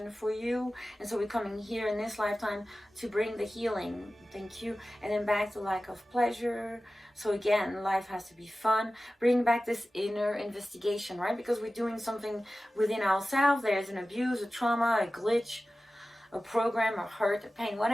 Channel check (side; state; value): both; normal; correlation 0.96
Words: for you. And so we're coming here in this lifetime to bring the healing. Thank you. And then back to lack of pleasure. So again, life has to be fun. Bring back this inner investigation, right? Because we're doing something within ourselves. There's an abuse, a trauma, a glitch, a program, a hurt, a pain,